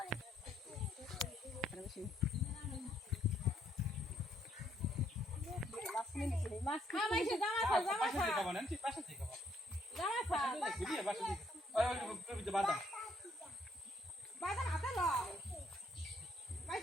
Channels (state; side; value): normal; both; correlation 0.70